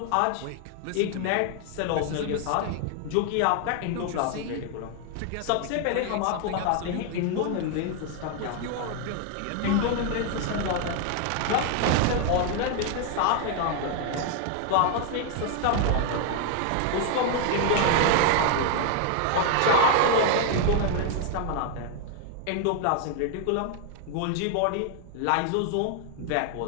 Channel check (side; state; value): both; different; correlation 0.00